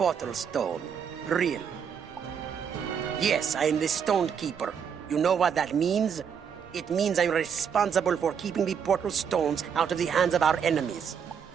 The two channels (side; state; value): left; quieter; 7.3 dB